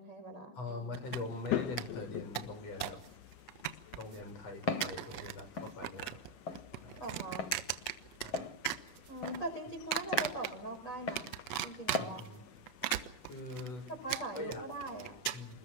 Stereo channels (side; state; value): right; late; 8.0 ms